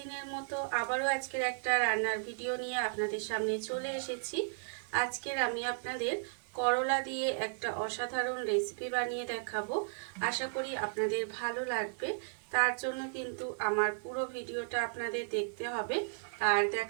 মতো আবারও আজকের একটা রান্নার ভিডিও নিয়ে আপনাদের সামনে চলে এসেছি। আজকের আমি আপনাদের করলা দিয়ে একটা অসাধারণ রেসিপি বানিয়ে দেখাবো। আশা করি আপনাদের ভালো লাগবে। তার জন্য কিন্তু আমার পুরো ভিডিওটা আপনাদের দেখতে হবে। আর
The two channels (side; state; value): left; silent; digital silence